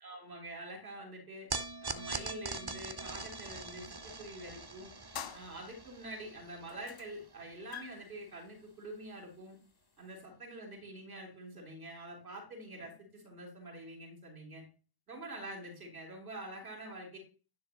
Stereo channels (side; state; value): left; late; 1.1 ms